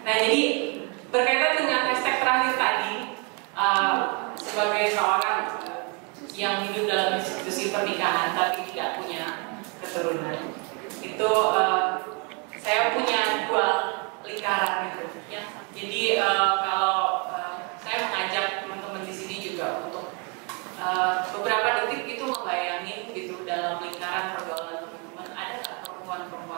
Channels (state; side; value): quieter; left; 34.0 dB